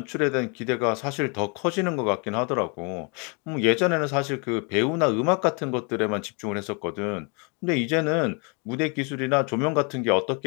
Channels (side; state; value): right; quieter; 34.2 dB